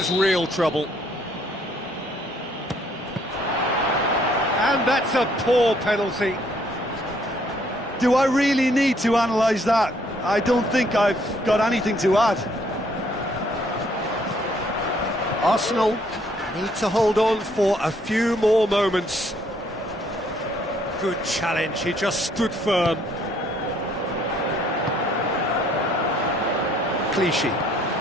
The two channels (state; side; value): normal; both; correlation 0.66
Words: real trouble. And that's a poor penalty. Do I really need to analyse that? I don't think I've got anything to add. Arsenal need to hold on for a few more moments. Good challenge, he just stood firm. Clichy.